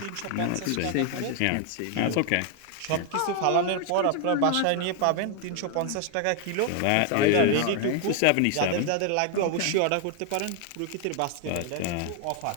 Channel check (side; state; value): both; different; correlation 0.00